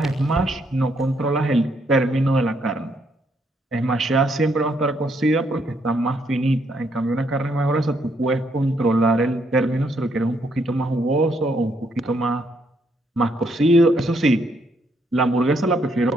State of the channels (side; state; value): both; normal; correlation 0.73